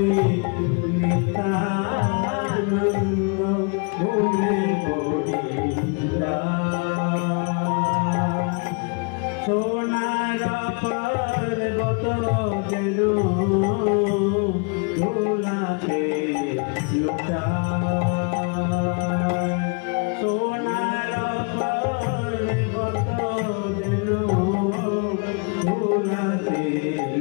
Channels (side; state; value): right; quieter; 35.8 dB